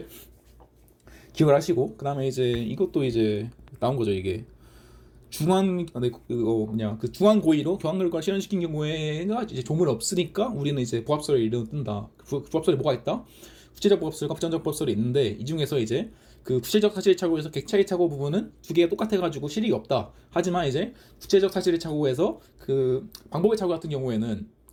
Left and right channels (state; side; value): identical; both; correlation 1.00